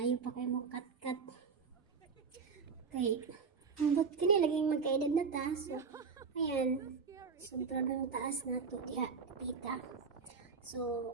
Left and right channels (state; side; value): quieter; left; 5.4 dB